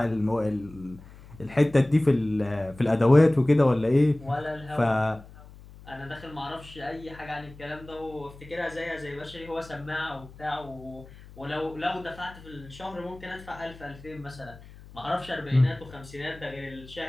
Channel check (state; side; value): noise; left; hum, 19 dB below the sound